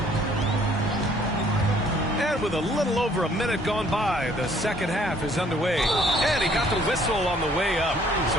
And with a little over a minute gone by, the second half is underway. And he got the whistle on the way up,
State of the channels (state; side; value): normal; both; correlation 0.61